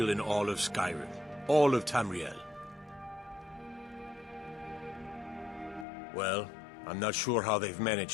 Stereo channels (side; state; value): right; drops out; at 5.9 s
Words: in all of Skyrim. All of Tamriel. Well, I'm not sure how they've